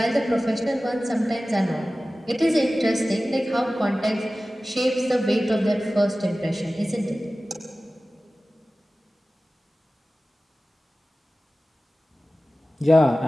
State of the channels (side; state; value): both; normal; correlation 0.96